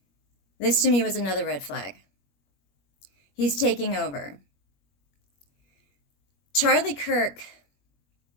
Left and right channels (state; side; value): late; right; 21 ms